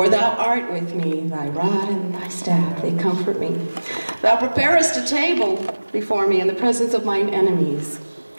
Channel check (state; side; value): inverted; both; correlation -1.00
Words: thou art with me, thy rod and thy staff, they comfort me. Thou preparest a table before me in the presence of mine enemies.